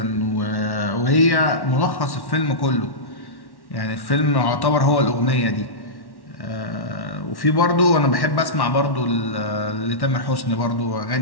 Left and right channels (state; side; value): late; right; 1.1 ms